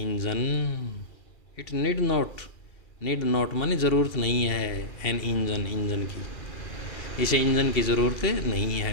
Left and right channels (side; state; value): right; late; 2.4 ms